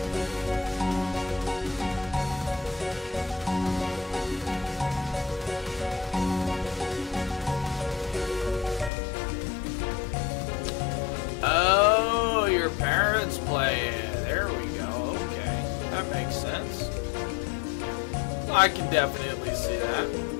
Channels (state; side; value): drops out; right; at 8.9 s